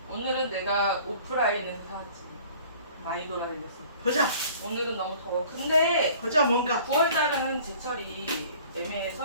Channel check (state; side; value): inverted; both; correlation -0.50